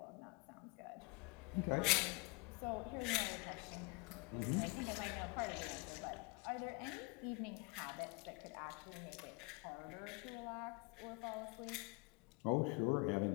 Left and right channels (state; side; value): quieter; right; 26.9 dB